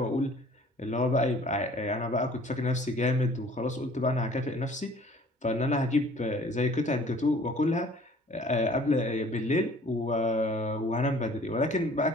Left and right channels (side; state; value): both; normal; correlation 0.52